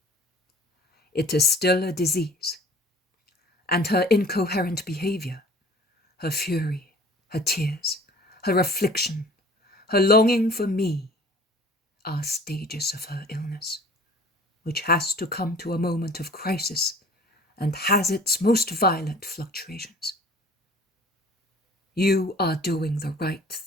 It is still a disease, and her incoherent behavior, her fury, her tears, her affliction, her longing for me are stages of her illness, which has to come to a moment of crisis and has its most violent fluctuations. You are doing the right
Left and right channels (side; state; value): both; normal; correlation 0.48